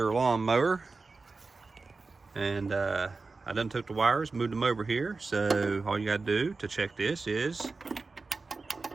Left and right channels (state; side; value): quieter; left; 4.0 dB